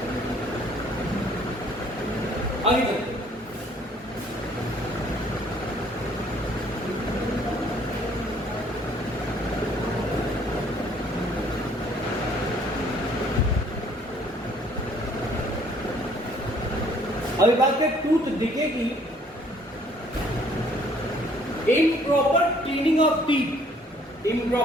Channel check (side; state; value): both; normal; correlation 0.60